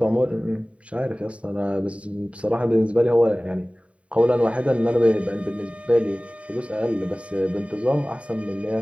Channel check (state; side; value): late; left; 0.064 ms